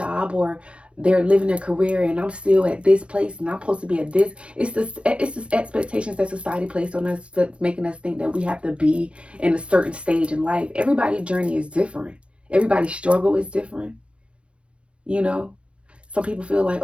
or they're living their career, and I'm still at this place and I'm supposed to be at this. It's this expectations that society placed on us that's making us think that we have to be in a certain stage in life. Everybody's journey is different. Everybody's struggle is different. You know, some people feel like,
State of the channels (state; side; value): late; left; 0.059 ms